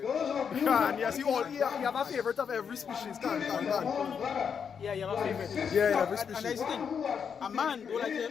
Those of you God, yes, you have a favorite of every species. God. brother, yeah, you have a favorite. Yeah, every And that's species. the thing. A man do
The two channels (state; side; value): quieter; right; 6.9 dB